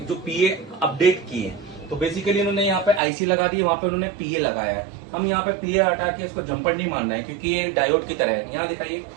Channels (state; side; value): drops out; left; at 3.0 s